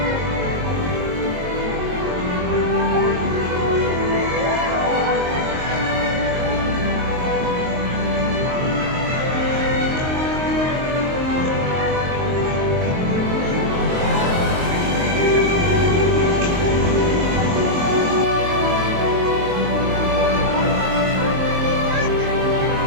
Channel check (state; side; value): late; left; 22 ms